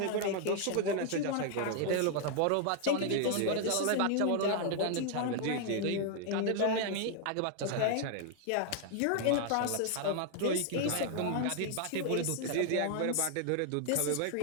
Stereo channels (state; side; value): different; both; correlation 0.00